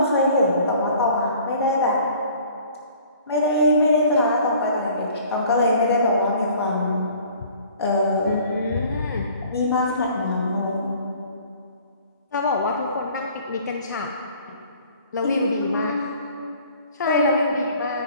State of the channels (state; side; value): inverted; both; correlation -0.52